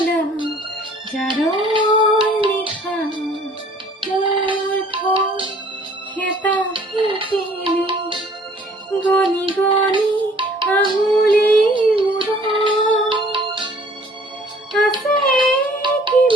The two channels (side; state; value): both; normal; correlation 0.56